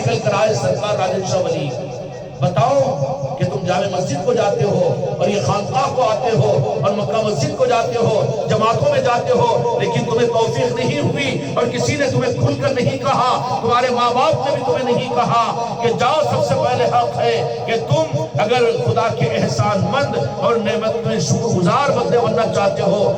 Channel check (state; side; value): identical; both; correlation 1.00